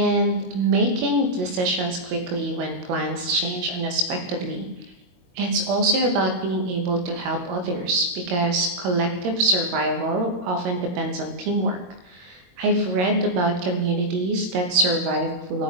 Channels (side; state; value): left; late; 22 ms